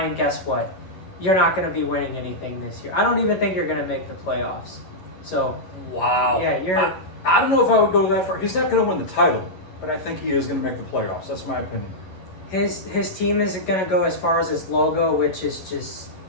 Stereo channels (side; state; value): right; late; 11 ms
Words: guess what? You're not going to be winning anything this year. I don't even think you're going to make the playoffs. So, wow. Yeah, I don't know if I would go that far. He's not going to win the title, but I think he is going to make the playoffs. That's my opinion. His team isn't going to go as far as his logo, which is just